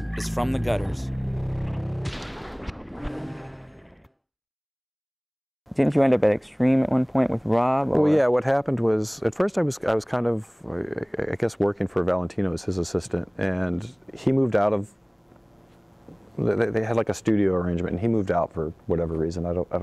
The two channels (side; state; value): both; identical; correlation 1.00